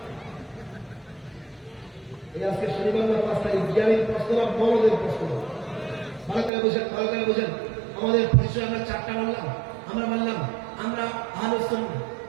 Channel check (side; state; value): left; drops out; at 6.5 s